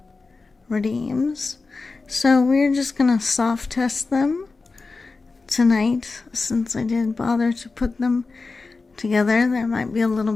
redeems. So we're just gonna soft test them tonight, since I did bother to put them together. There might be a little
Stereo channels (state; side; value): quieter; right; 4.0 dB